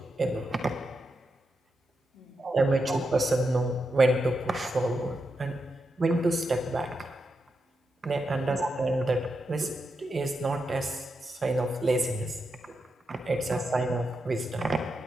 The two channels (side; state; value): both; normal; correlation 0.86